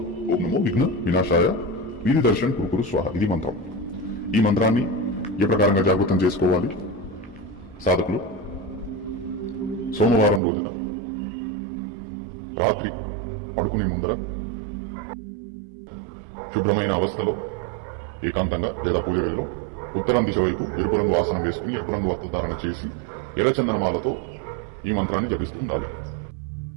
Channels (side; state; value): left; drops out; at 10.4 s